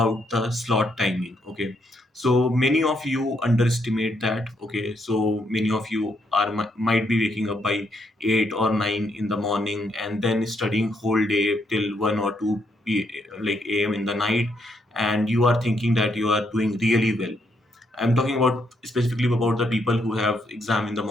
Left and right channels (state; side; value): normal; both; correlation 0.75